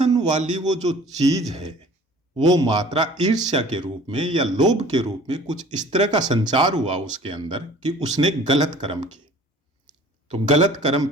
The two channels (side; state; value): both; normal; correlation 0.48